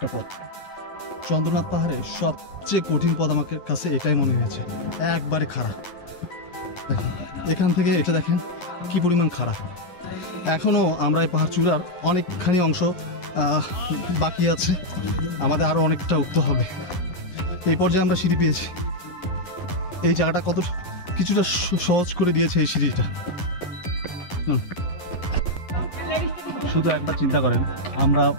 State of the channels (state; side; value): late; right; 11 ms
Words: পথ। চন্দ্রনাথ পাহাড়ে সবচেয়ে কঠিন পথ আমার কাছে এটাই মনে হয়েছে, একবারে খাড়া। দেখেন এখান থেকে এটা দেখেন কি পরিমাণ খাড়া। এখনও আমরা এই পাহাড় চূড়ার অনেকখানি অংশ বাকি আছে, আমাদের আরও অনেকটা উঠতে হবে। এই পর্যায়ে আমরা সিঁড়ি পেয়েছি। এই জায়গাটা কত কিছুটা সহজ করে দিয়েছে এই সিঁড়িটা। শুধু একবার চিন্তা করেন আমরা